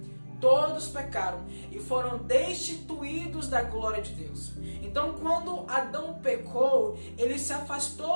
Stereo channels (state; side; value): inverted; both; correlation -1.00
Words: todos pecaram e foram destituídos da glória de Deus. Então, quando Adão pecou, ele se